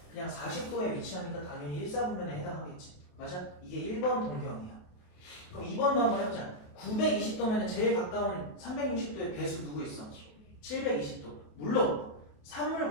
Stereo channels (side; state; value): right; late; 28 ms